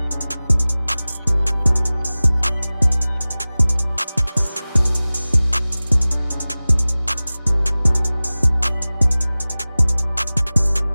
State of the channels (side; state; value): both; inverted; correlation -0.98